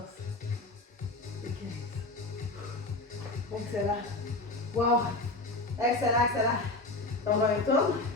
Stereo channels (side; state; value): right; quieter; 3.0 dB